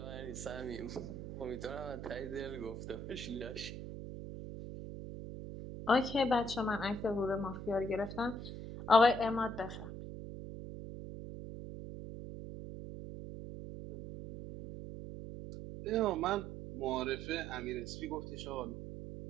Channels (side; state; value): right; noise; hum, 8 dB below the sound